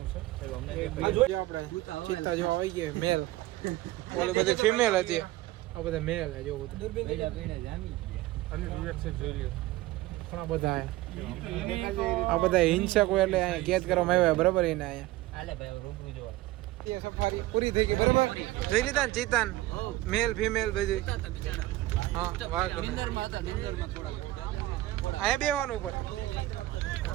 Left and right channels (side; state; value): left; quieter; 17.2 dB